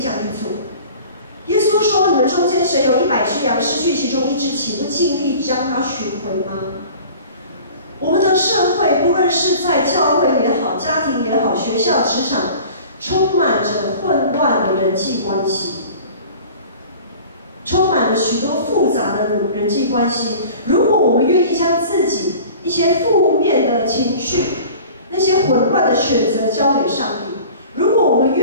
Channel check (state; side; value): inverted; both; correlation -0.43